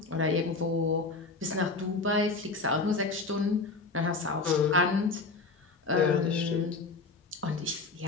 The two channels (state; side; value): quieter; right; 3.8 dB